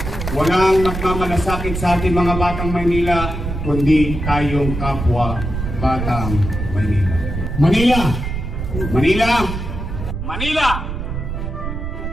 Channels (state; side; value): noise; right; rumble, 5 dB below the sound